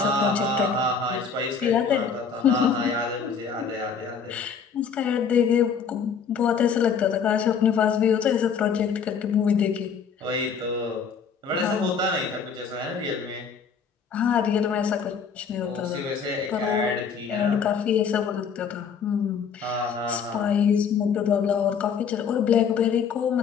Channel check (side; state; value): right; quieter; 6.3 dB